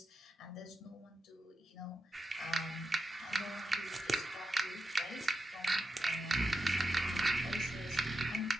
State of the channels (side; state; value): both; normal; correlation 0.89